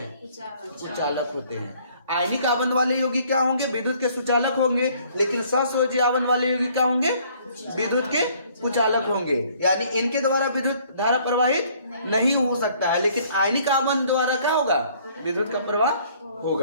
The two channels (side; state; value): both; inverted; correlation -0.60